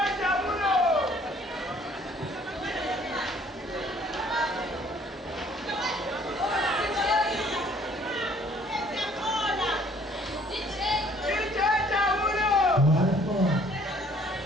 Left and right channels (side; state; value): both; normal; correlation 0.59